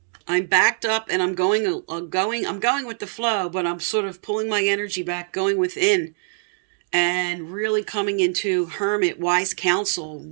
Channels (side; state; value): left; silent; digital silence